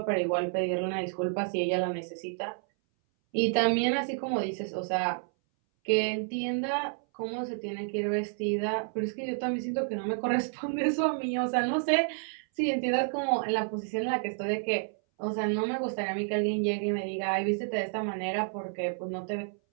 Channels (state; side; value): silent; left; 58 dB below the other